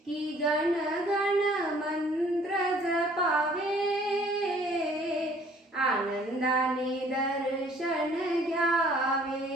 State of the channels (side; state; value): both; normal; correlation 0.57